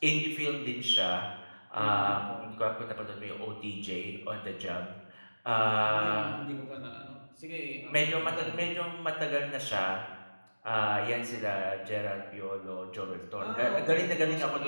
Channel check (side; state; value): both; inverted; correlation -1.00